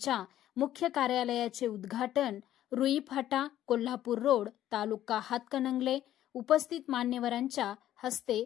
मुख्य कार्यालयाचे उद्घाटन रुई फाटा, कोल्हापूर रोड, तालुका हातकणंगले उपस्थित मान्यवरांच्या हस्ते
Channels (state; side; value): quieter; right; 12.4 dB